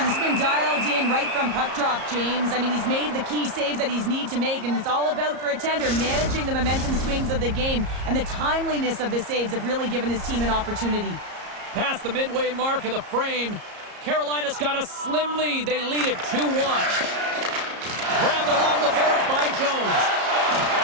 been dialed in right from puck drop, James. I mean, he's made the key saves that he's need to make, and it's all about, for a tender, managing the momentum swings of the game, and the timeliness of the saves have really given his team an opportunity. Past the midway mark of the frame, Carolina's got a slim lead. They lead it 2-1. Grabbed along the boards by Jones.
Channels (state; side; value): late; left; 34 ms